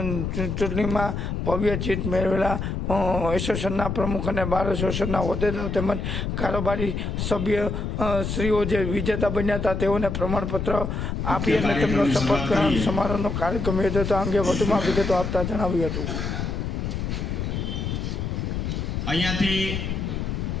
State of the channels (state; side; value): noise; left; rumble, 2 dB below the sound